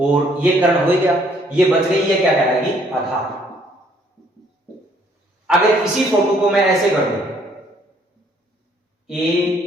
ये कर्ण हो गया, ये बच गई, ये क्या कहलाएगी? आधार। अगर इसी फोटो को मैं ऐसे कर दूं, A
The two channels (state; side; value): normal; both; correlation 0.64